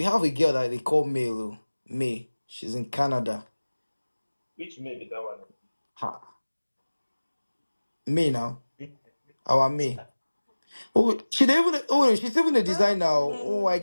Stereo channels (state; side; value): inverted; both; correlation -1.00